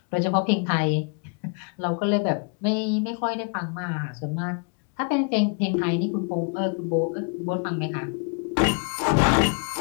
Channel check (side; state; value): right; quieter; 37.4 dB